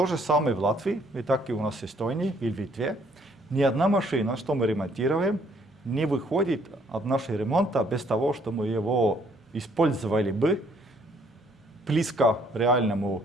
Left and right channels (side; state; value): both; normal; correlation 0.65